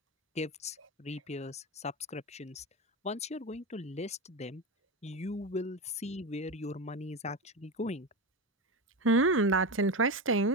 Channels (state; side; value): normal; both; correlation 0.18